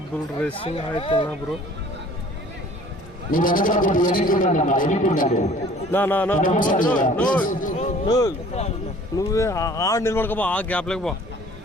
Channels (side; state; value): both; normal; correlation 0.51